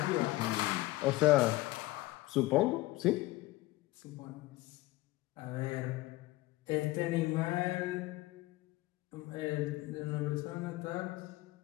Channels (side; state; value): right; quieter; 18.9 dB